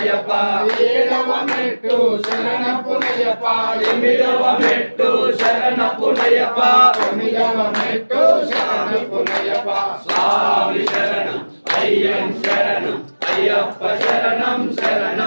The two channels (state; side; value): inverted; both; correlation -1.00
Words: ఏడవ మెట్టు శరణపునయ్యప్ప ఎనిమిదవ మెట్టు శరణపునయ్యప్ప తొమ్మిదవ మెట్టు శరణపునయ్యప్ప స్వామి శరణం అయ్యన్ శరణం అయ్యప్ప శరణం